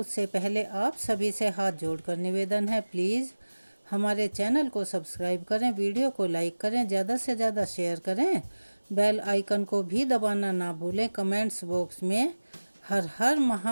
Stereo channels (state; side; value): inverted; both; correlation -1.00